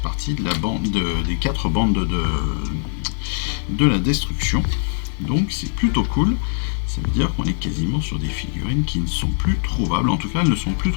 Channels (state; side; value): silent; right; 65 dB below the other